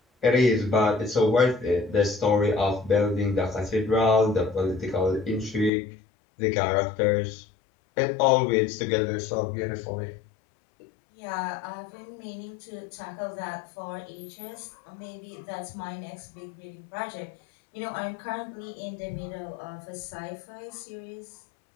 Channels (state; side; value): drops out; right; at 5.7 s